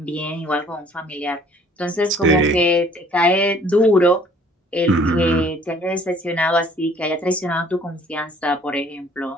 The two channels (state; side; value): normal; both; correlation 0.56